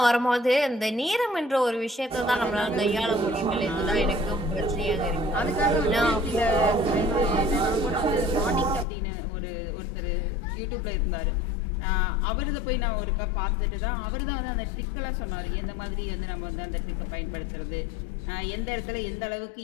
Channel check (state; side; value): drops out; right; at 8.8 s